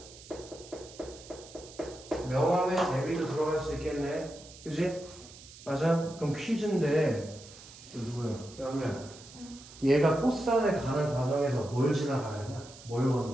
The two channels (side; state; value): right; noise; hiss, 18 dB below the sound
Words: 명함에 대비도 들어갈 수 있겠네. 그지? 맞아? 그럼 퀴즈인데 이거 누구야? 양우야. 얘가 꽃산에 가는 과정에서 뭘 지나가야 되나? 뭘